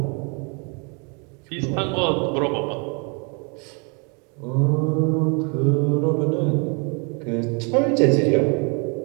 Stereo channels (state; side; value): quieter; left; 34.6 dB